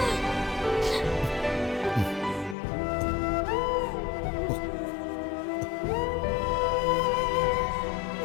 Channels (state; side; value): drops out; right; at 2.6 s